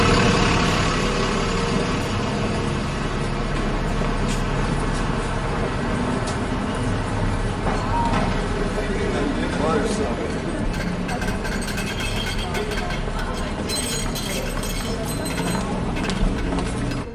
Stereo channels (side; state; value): both; identical; correlation 1.00